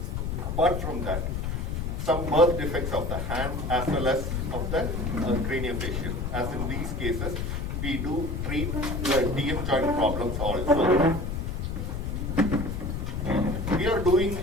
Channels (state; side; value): noise; left; rumble, 2 dB below the sound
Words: Apart from that, some birth defects of the hand as well as of the craniofacial. As in these cases, we do treat the DM joint problems also. We are doing